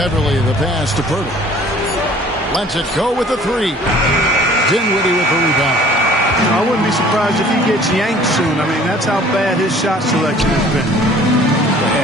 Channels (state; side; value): normal; both; correlation 0.52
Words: the pass to Poeltl. Lets it go with the 3. Dinwiddie with the rebound. I wouldn't be surprised if he gets yanked soon. I mean, that's how bad his shot selection has been.